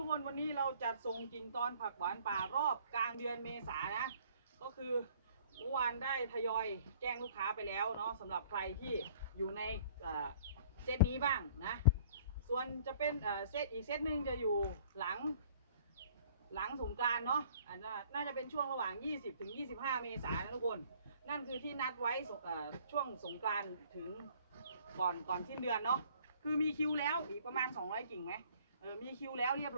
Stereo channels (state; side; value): inverted; both; correlation -0.56